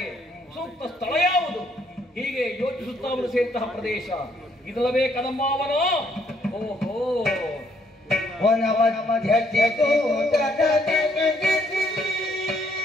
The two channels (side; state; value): both; normal; correlation 0.69